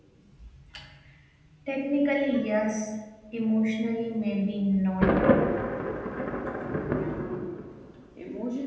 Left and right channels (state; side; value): identical; both; correlation 1.00